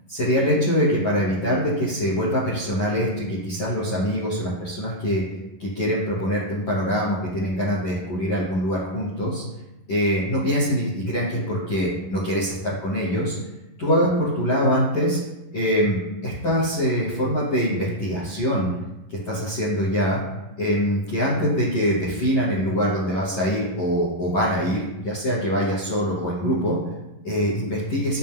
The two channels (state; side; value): late; right; 11 ms